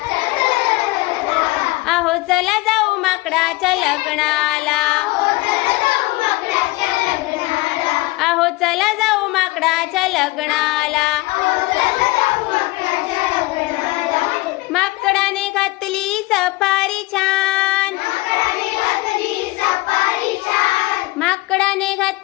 अहो चला जाऊ माकडाच्या लग्नाला अहो चला जाऊ माकडाच्या लग्नाला माकडाने घातली सफारी छान माकडाने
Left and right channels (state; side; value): quieter; right; 21.6 dB